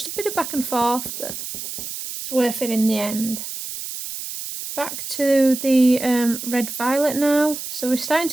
a bit of back and forth, but it's worth it in the end. Back to the red violet now. So we're starting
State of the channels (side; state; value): right; noise; hiss, 8 dB below the sound